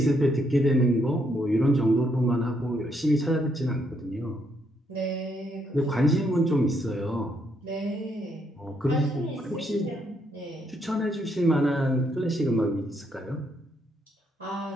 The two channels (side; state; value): both; normal; correlation 0.74